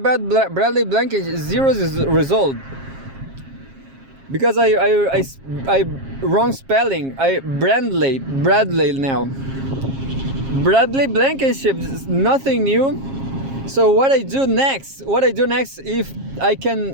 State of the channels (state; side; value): late; left; 7.4 ms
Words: Bradley Blankenship? Zero result. Because I wrong spelling. Bradley now. Bradley Blankenship, nothing new. So what I do next? If I